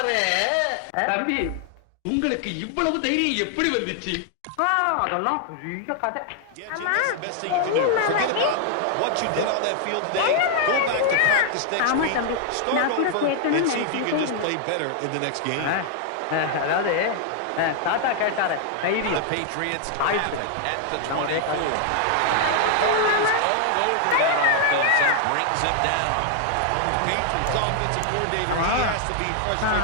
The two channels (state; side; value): different; both; correlation 0.00